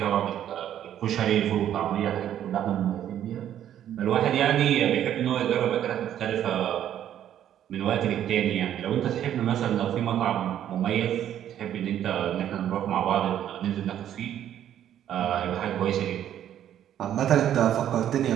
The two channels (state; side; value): quieter; left; 10.7 dB